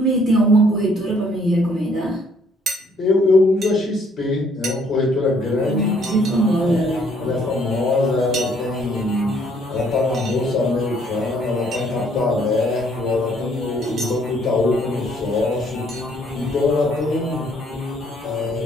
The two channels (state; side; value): normal; both; correlation 0.64